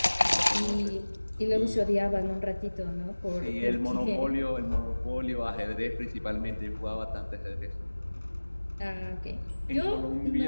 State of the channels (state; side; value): inverted; both; correlation -1.00